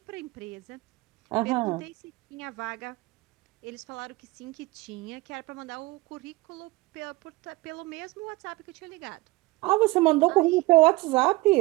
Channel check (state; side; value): quieter; left; 21.9 dB